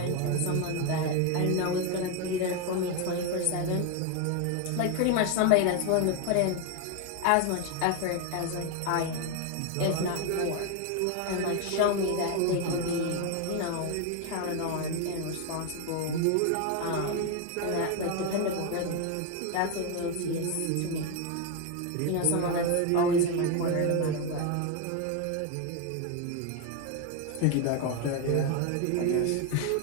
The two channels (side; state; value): both; different; correlation 0.01